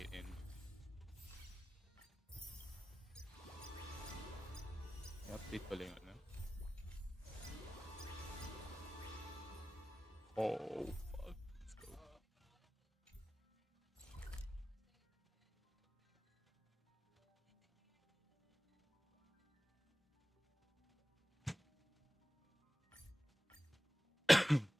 in. May update pala yung ano. Oh fuck. Let's go.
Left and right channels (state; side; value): normal; both; correlation 0.96